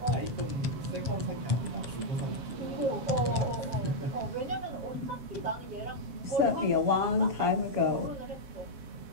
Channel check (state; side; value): late; left; 7.1 ms